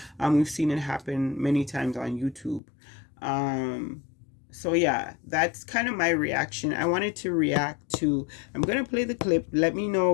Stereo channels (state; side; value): drops out; right; at 2.6 s